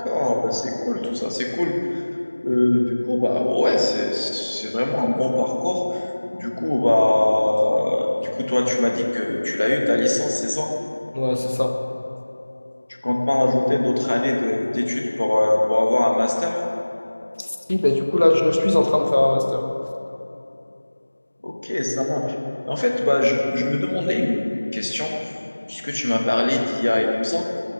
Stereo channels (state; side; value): inverted; both; correlation -1.00